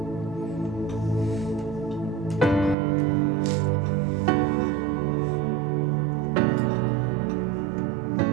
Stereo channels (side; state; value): left; drops out; at 2.8 s